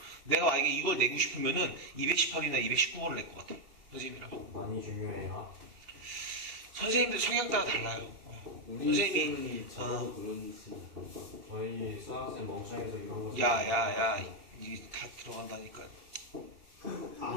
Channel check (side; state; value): left; late; 2.8 ms